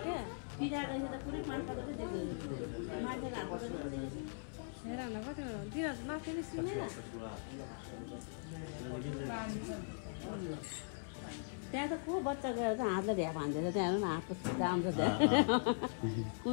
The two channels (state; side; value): silent; right; 51 dB below the other